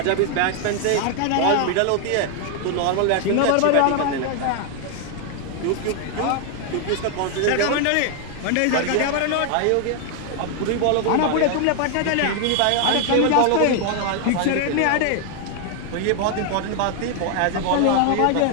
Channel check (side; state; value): both; different; correlation 0.00